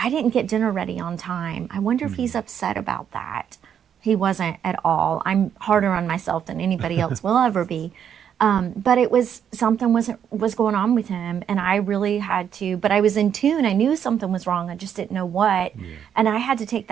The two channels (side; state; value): left; quieter; 8.6 dB